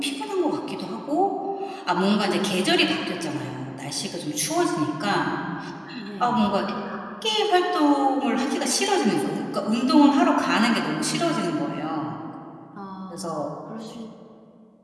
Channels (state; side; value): identical; both; correlation 1.00